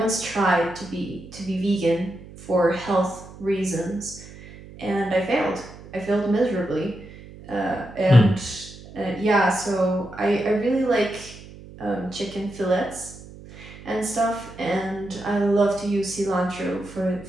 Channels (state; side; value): noise; right; hum, 17 dB below the sound